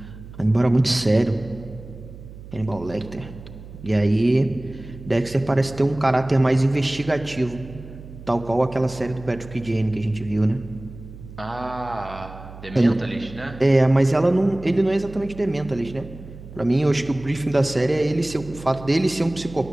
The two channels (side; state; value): right; noise; hum, 16 dB below the sound